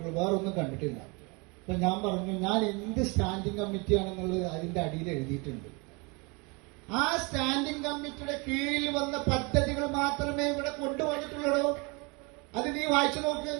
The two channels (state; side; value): quieter; left; 29.2 dB